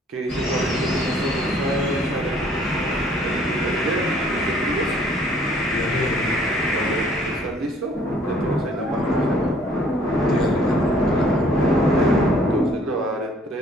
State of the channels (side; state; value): both; normal; correlation 0.60